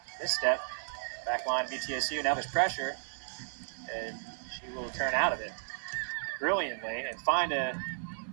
And this step, back line of ETSU, now there's pressure, and she will turn out of it brilliantly and find a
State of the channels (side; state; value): left; silent; 55 dB below the other